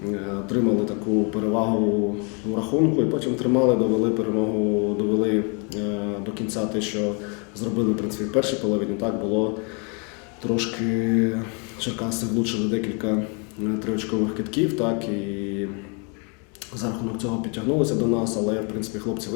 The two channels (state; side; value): quieter; right; 35.3 dB